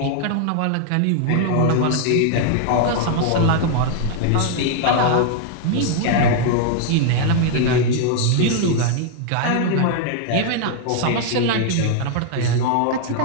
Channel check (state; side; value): different; both; correlation 0.00